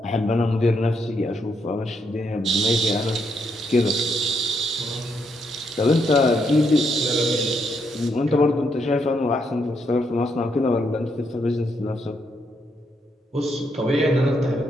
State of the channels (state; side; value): normal; both; correlation 0.77